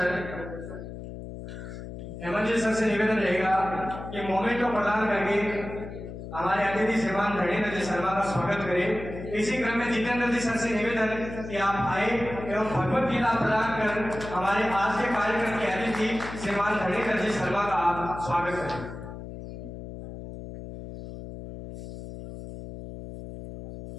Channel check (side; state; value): left; noise; hum, 10 dB below the sound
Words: जी सर से निवेदन रहेगा कि मोमेंट को प्रदान करके हमारे अतिथि श्रीमान धरणीधर जी शर्मा का स्वागत करें। इसी क्रम में जितेंद्र जी सर से निवेदन कि आप आए एवं भगवत गीता प्रदान कर हमारे आज के कार्यक्रम के अतिथि श्रीमान धरणीधर जी शर्मा का आप स्वागत करें।